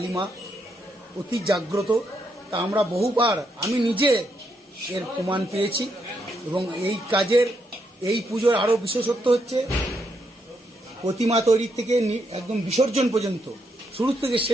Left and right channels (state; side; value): normal; both; correlation 0.78